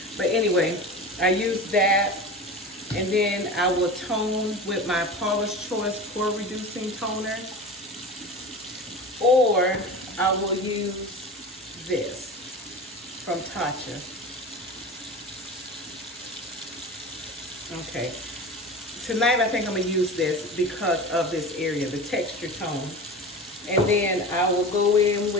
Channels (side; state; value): both; normal; correlation 0.31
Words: But anyway, I use that, and then I will tone with my Paula's Choice pore reducing toner, or I will use this from Tatcha. Okay, tonight I think I'm gonna use this because of this area, the texture tone. And then I will go in